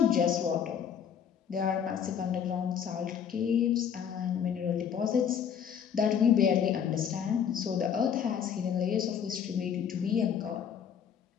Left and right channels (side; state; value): right; quieter; 8.0 dB